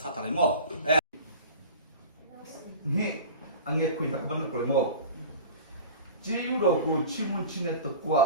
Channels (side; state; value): both; inverted; correlation -0.36